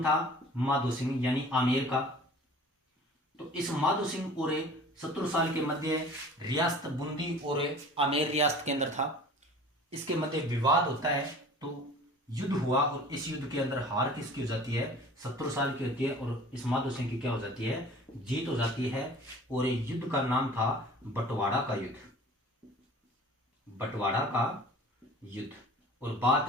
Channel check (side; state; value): both; normal; correlation 0.44